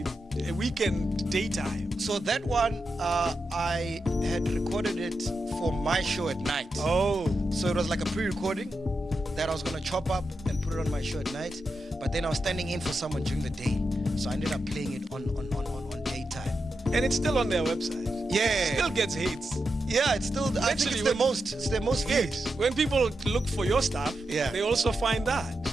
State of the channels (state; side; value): normal; both; correlation 0.87